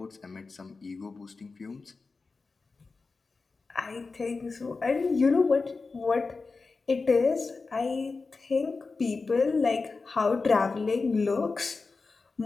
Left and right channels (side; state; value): right; quieter; 4.1 dB